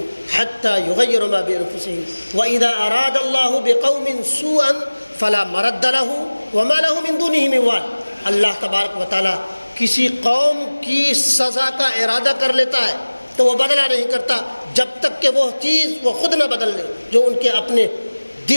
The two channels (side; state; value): both; inverted; correlation -1.00